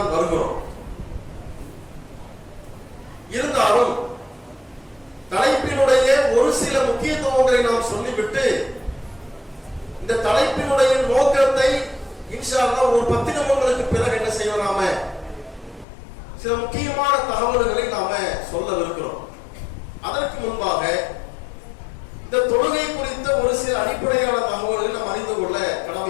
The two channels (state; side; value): drops out; right; at 15.9 s